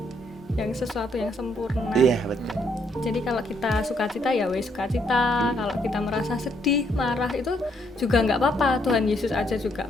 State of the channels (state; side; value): normal; both; correlation 0.72